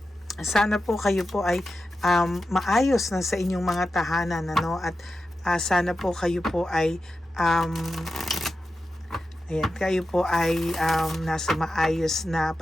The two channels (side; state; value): both; normal; correlation 0.91